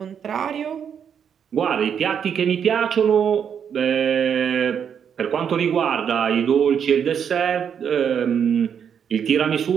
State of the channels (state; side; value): quieter; left; 7.8 dB